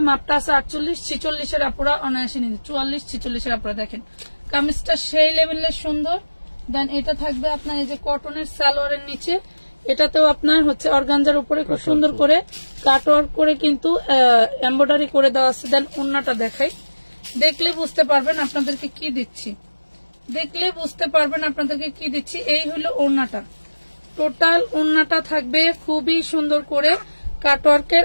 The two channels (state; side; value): inverted; both; correlation -1.00